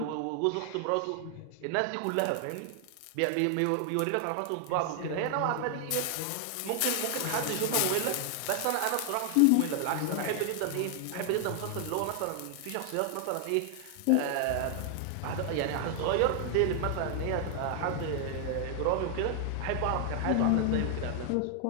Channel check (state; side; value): different; both; correlation 0.00